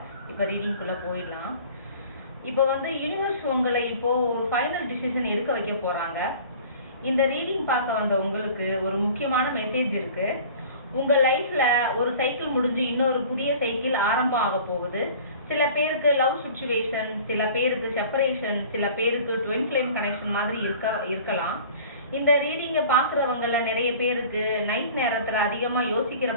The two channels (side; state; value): both; inverted; correlation -0.45